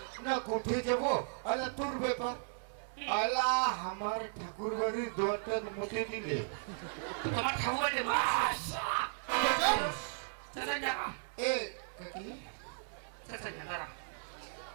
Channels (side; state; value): left; silent; 54 dB below the other